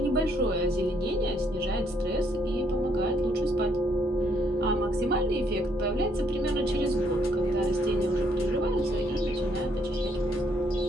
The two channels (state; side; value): normal; both; correlation 0.69